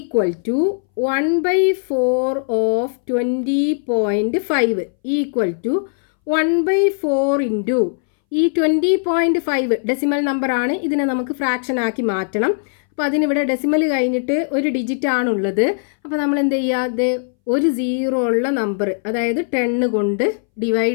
to 1/4 of 20.5 equal to 1/4 into ഈ 20.5 ഡെസിമൽ നമ്പർ ആണ്. ഇതിനെ നമുക്ക് ഫ്രാക്ഷൻ ആക്കി മാറ്റണം. അപ്പോൾ അതിനിവിടെ ഡെസിമൽ കഴിഞ്ഞിട്ട് ഒരു ഡിജിറ്റ് ആണുള്ളത്. അപ്പോൾ നമ്മൾ എന്ത് ചെയ്യുക, ഒരു 0 ഉള്ള നമ്പർ അതായത് 10 കൊണ്ട്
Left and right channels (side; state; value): right; silent; 64 dB below the other